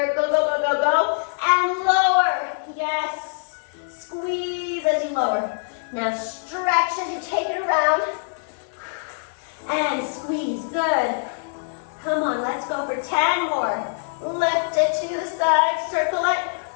Go, go, go, go, go. And lower. Yes. Squeeze as you lower. Now stretch as you take it around. And squeeze, good. Come on, let's go for 10 more. Lift it to the side, circle it.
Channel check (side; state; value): right; silent; 63 dB below the other